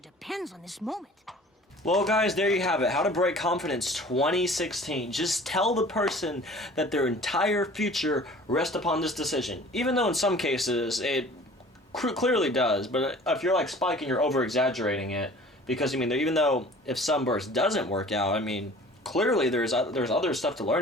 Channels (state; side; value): normal; both; correlation 0.46